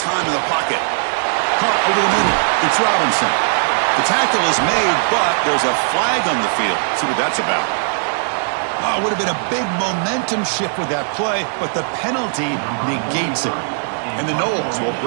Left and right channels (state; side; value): silent; left; digital silence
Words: in the pocket. Caught over the middle. It's Robinson. The tackle is made, but there's a flag on the field. See what that's about. Oh, it would have been a big momentum shift with that play, but the penalty negates it. And the Noles will